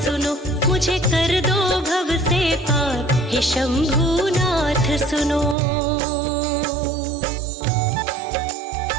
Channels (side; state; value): left; drops out; at 5.6 s